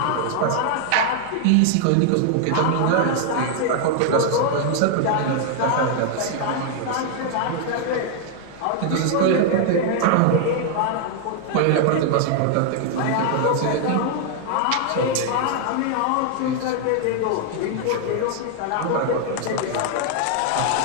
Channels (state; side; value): different; both; correlation 0.00